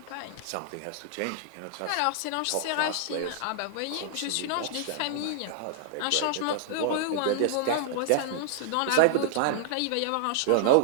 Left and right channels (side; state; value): both; different; correlation -0.01